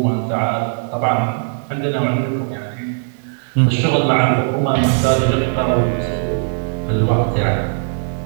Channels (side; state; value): left; silent; digital silence